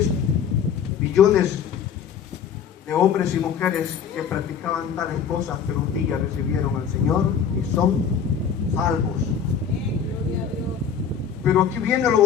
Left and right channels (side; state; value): right; quieter; 7.4 dB